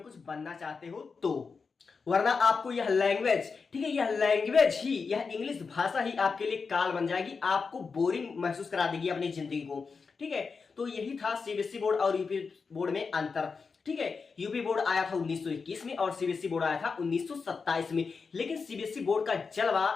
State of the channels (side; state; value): right; quieter; 5.0 dB